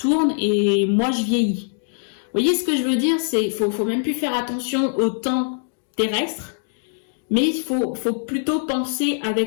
et moi je vieillis. Vous voyez ce que je veux dire? C'est faut même plus faire attention au temps terrestre, mais il faut plutôt penser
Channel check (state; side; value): silent; right; digital silence